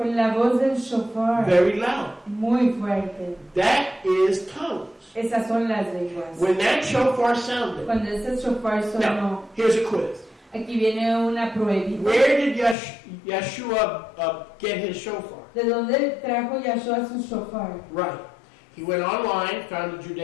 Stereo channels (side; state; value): right; drops out; at 12.8 s